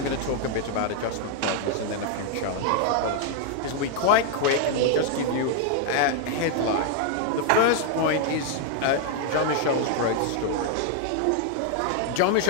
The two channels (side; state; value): both; different; correlation 0.00